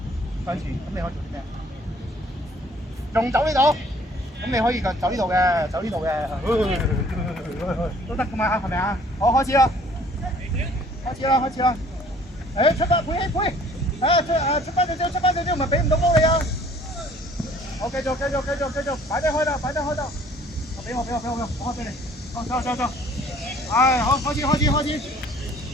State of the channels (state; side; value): normal; both; correlation 0.56